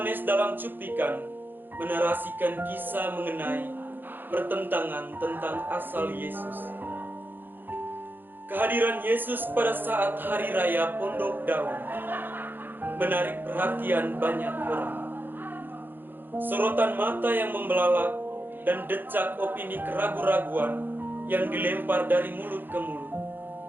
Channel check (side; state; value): left; late; 0.094 ms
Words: dalam cuplikan menarasikan kisah mengenai pertentangan tentang asal Yesus. Kehadiran Yesus pada saat hari raya Pondok Daun menarik perhatian banyak orang. Sorotan mata yang membelalak dan decak opini keraguan-raguan yang dilempar dari mulut ke mulut